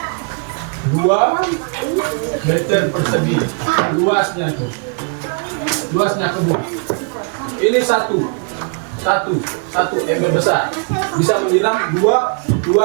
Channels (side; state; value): left; quieter; 39.3 dB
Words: 2 meter persegi luasnya itu, luasnya kebun. Ini satu ember besar bisa menyiram 2